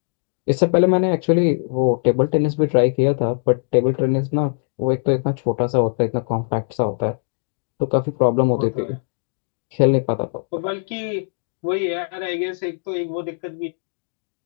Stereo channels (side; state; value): right; silent; digital silence